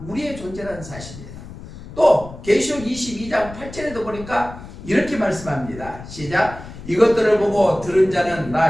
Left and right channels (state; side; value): noise; left; rumble, 14 dB below the sound